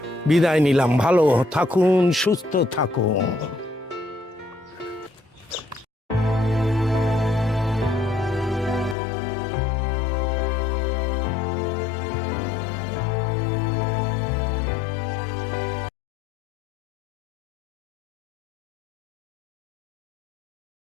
বিদায় নিলাম। ভালো থাকুন, সুস্থ থাকুন।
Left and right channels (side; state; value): right; drops out; at 9.0 s